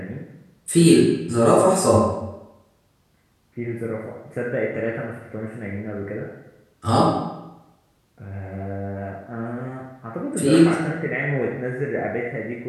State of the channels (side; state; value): both; identical; correlation 1.00